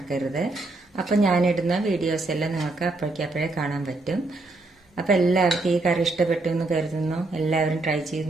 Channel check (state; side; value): quieter; left; 3.0 dB